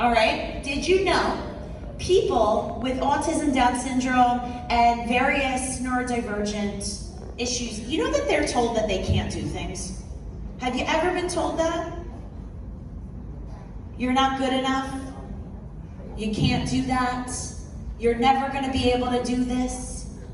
right, did you know people with autism, Down syndrome, and various neurodivergent issues, you know that they're told that they can't do things? Have you ever been told that? You're not good enough. You can't do that. You're never going to be able to do this.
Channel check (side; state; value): both; identical; correlation 1.00